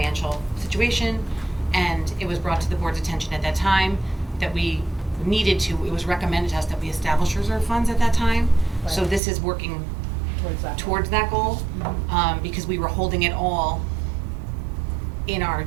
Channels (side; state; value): left; drops out; at 9.2 s